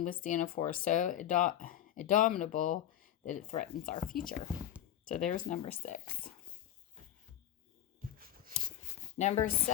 withstand a force so indomitable that it threatens our future? So there's number 6. Number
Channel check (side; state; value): right; quieter; 11.7 dB